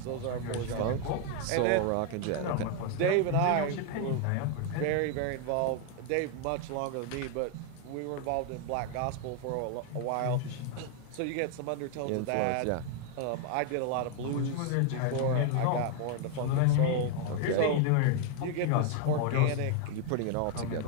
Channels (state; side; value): different; both; correlation 0.01